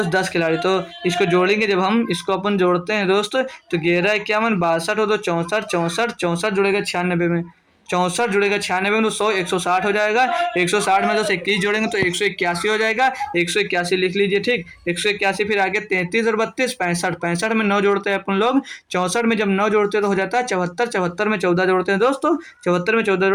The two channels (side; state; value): both; identical; correlation 1.00